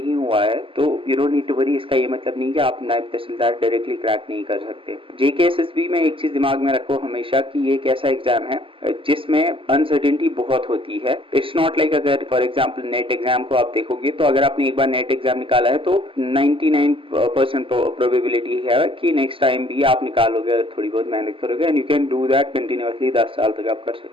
हुआ है तो you don't need to worry. इसका ये मतलब नहीं कि आप नायब तहसीलदार डायरेक्टली क्रैक नहीं कर सकते। जेकेएसएसबी में एक चीज दिमाग में रखो हमेशा कि ये एक ऐसा एग्जाम है जिसमें अनसर्टेनिटी बहुत होती है। इट्स नॉट लाइक अगर फॉर एग्जाम्पल नेट एग्जाम को आप देखोगे तो अगर आपने एक बार नेट एग्जाम निकाला है तो 99% प्रोबेबिलिटी है कि नेक्स्ट टाइम भी आप निकालोगे अगर थोड़ी बहुत मेहनत करोगे, and you can do that continuously 10 साल तक आप कर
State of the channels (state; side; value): late; left; 0.25 ms